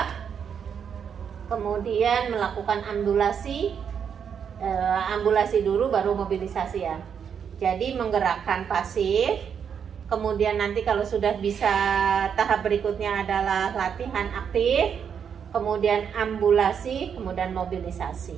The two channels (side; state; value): left; quieter; 7.5 dB